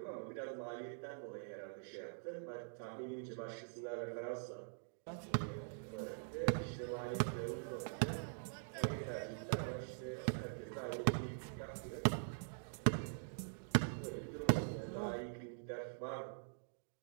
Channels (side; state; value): left; silent; digital silence